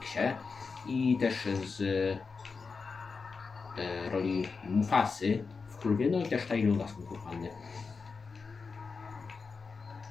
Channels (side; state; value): right; quieter; 4.8 dB